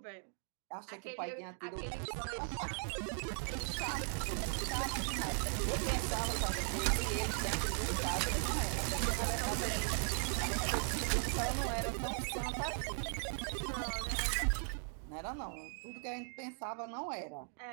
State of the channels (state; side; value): silent; left; 52 dB below the other